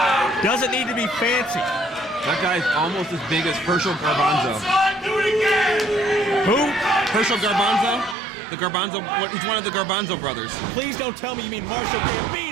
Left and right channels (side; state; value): left; drops out; at 8.2 s